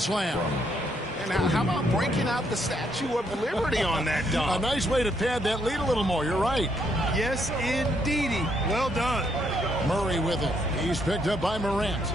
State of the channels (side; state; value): both; normal; correlation 0.73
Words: Now, how about breaking out the Statue of Liberty on that A dunk? nice way to pad that lead a little more. You're right. Yes, indeedy. Well done. Murray with it. He's picked up by Morant.